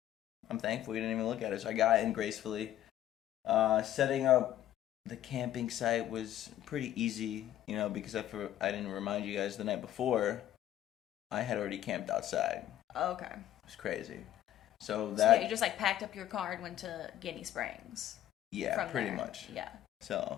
thankful we didn't even look at it. So I got in gracefully. Setting up the camping site was pretty easy, because I didn't remind you guys the night before, I had already camped outside. Okay. It was crazy. So you just packed up your car and went to Guinea Springs. Yeah, pretty much. Yeah. So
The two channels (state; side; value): quieter; right; 12.3 dB